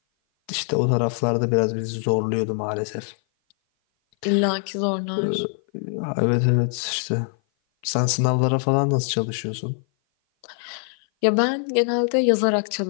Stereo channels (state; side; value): silent; right; 56 dB below the other